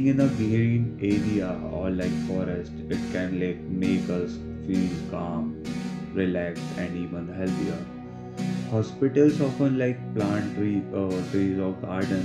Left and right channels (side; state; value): both; identical; correlation 1.00